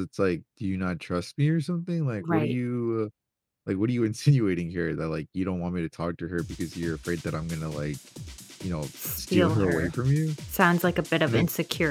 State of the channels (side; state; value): both; identical; correlation 1.00